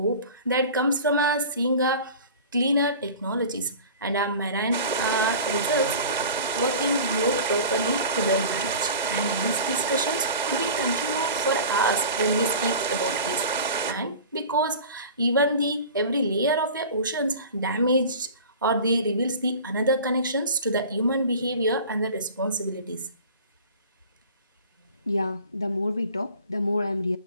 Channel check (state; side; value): inverted; both; correlation -0.39